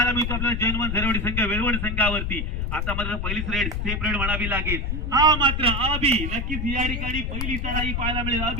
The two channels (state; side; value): noise; left; rumble, 2 dB below the sound